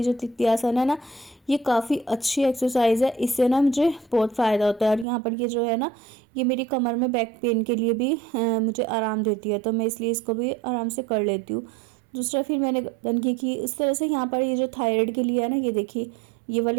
जो तित्यासन है ना, ये काफ़ी अच्छी एक्सरसाइज है, इससे ना मुझे बहुत फ़ायदा होता है। और यहाँ पर ये जो है ना, ये मेरी कमर में बैक पेन के लिए भी मुझे आराम देती है, तो मैं इसलिए इसको भी आराम से कर लेती हूँ। दूसरा फिर मैंने गर्दन की इस तरह से। यहाँ पर ये जो थायराइड के लिए है ना, ये देखिए ये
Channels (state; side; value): drops out; left; at 5.1 s